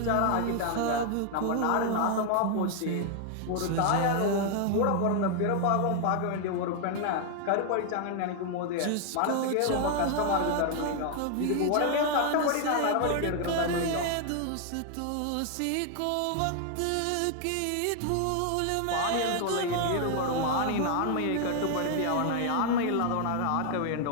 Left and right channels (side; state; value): both; different; correlation 0.00